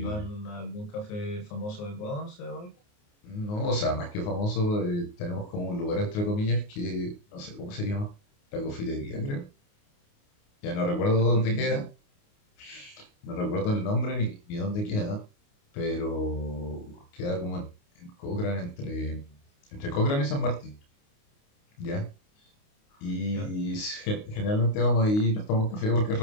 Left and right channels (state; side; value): late; right; 29 ms